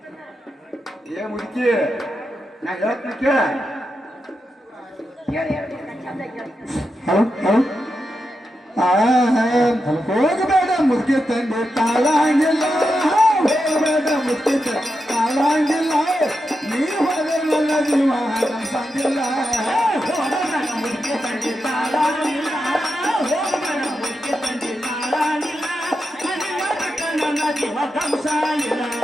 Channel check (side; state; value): both; normal; correlation 0.87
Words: ಏ ಮುದುಕಿ, ನಾ ಹೇಳ್ತೀನಿ ಕೇಳ. ಹೋಗಬೇಡ ಮುದುಕಿ ತಂದೆ ತಾಳಂಗಿಲ್ಲ, ಹೋಗಬೇಡ ಮುದುಕಿ ತಾಳಂಗಿಲ್ಲ, ನೀವು ಹೋದ್ರೆ ನನ್ನ ಜೀವ ಸಂಗಿಲ್ಲ. ಮುದುಕಿ ತಂದೆ ತಾಳಂಗಿಲ್ಲ, ಹೋಗಬೇಡ ಮುದುಕಿ ತಂದೆ ತಾಳಂಗಿಲ್ಲ, ನನ್ನ ಜೀವ ಕಂಸಾಗಿಲ್ಲ.